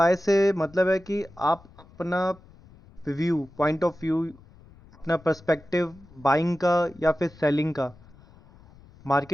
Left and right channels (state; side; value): noise; left; rumble, 24 dB below the sound